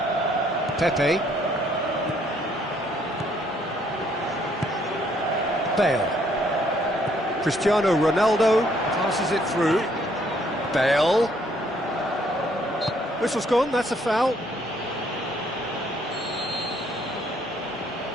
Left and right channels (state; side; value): normal; both; correlation 0.67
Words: Pepe. Bale. Cristiano Ronaldo passes it through. Bale. Whistle's gone, that's a foul.